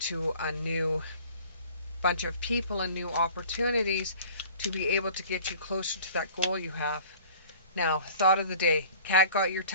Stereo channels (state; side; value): inverted; both; correlation -0.47